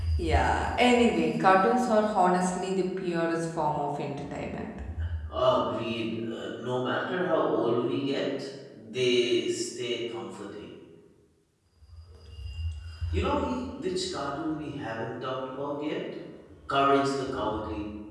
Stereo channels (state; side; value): identical; both; correlation 1.00